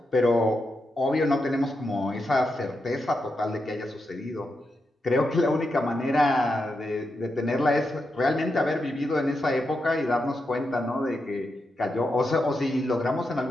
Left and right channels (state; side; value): normal; both; correlation 0.86